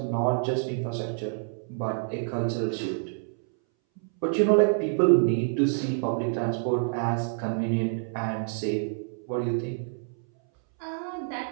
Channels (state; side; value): silent; left; 60 dB below the other